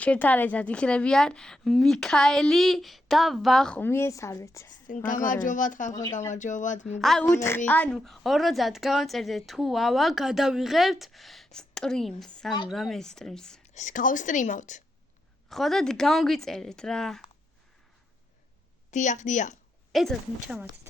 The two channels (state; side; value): normal; both; correlation 0.84